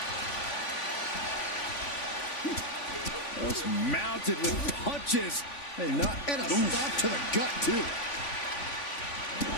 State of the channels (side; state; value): right; late; 3.5 ms